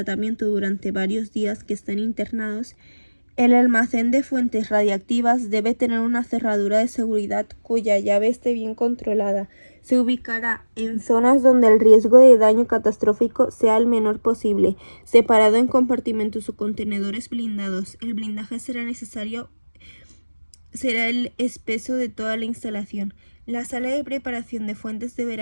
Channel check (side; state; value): both; inverted; correlation -1.00